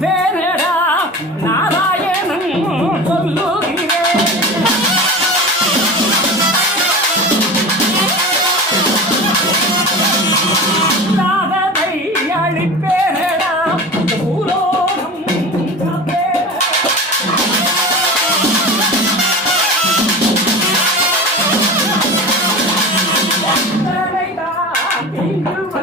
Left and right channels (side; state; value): both; normal; correlation 0.32